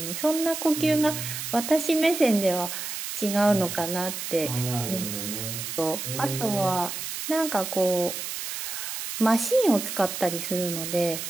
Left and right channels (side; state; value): right; noise; hiss, 6 dB below the sound